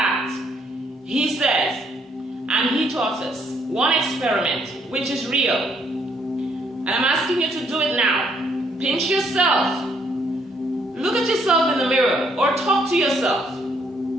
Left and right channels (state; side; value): normal; both; correlation 0.69